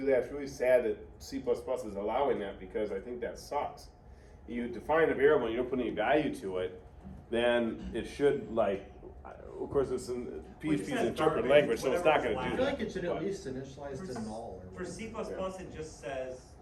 that. It's really sad that C++ is allowing that because I think that sucks. You define a variable and you don't put any value to it, then it should of course it's in Well, it PHP's says interpreted garbage, language, so it's not whatever going I to do feel that. like it should at But- least initialize to null. Or For C++, it just says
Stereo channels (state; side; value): identical; both; correlation 1.00